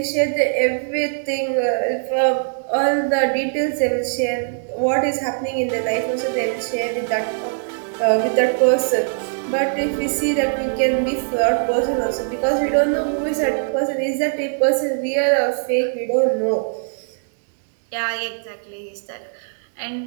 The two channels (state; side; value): silent; left; digital silence